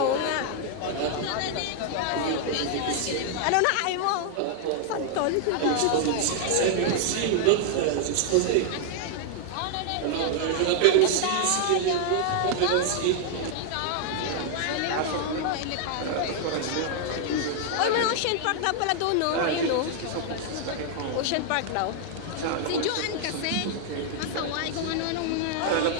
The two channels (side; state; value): both; different; correlation 0.00